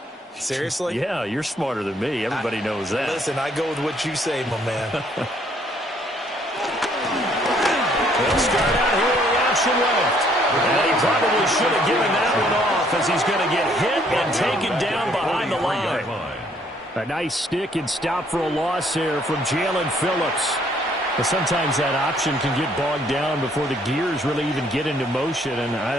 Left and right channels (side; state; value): both; normal; correlation 0.65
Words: Seriously? Yeah, you're smarter than me. Everybody knows that. Listen, I go with what you say, my man. He'll start out here with the option left. And he probably should have given that one off as he's going to get hit and taken down behind the line. A nice stick and stop for a loss there from Jalen Phillips. But sometimes that option can get bogged down before the gears really even get into motion, and